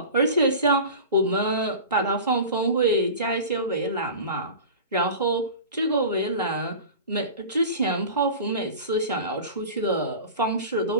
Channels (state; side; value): inverted; both; correlation -0.34